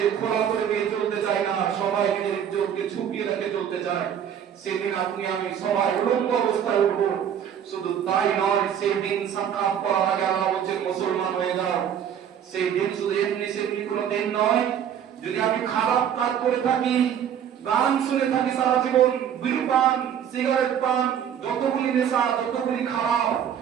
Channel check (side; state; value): left; quieter; 9.0 dB